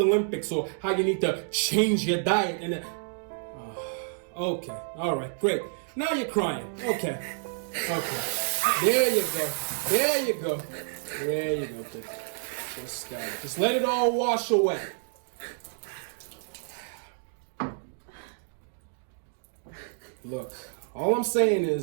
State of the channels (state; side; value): silent; left; digital silence